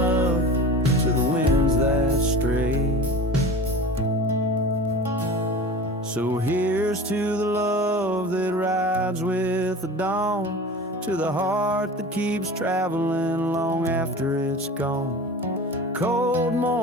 to the winds that stray. So here's to the love that rides with the dawn, to the heart that keeps traveling long after it's gone. Cold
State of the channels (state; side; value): normal; both; correlation 0.35